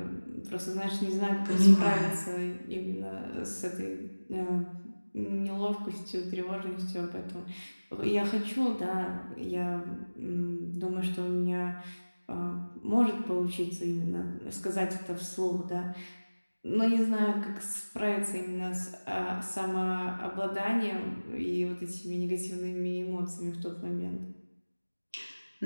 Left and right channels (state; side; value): inverted; both; correlation -1.00